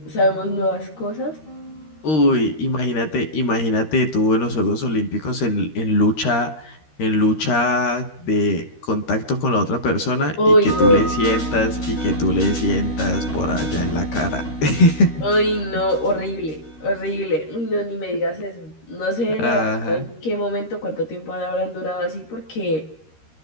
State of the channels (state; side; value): late; right; 13 ms